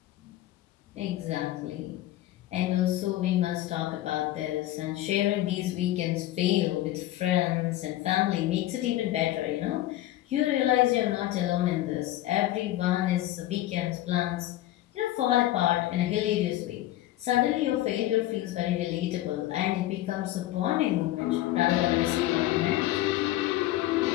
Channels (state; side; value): quieter; right; 15.0 dB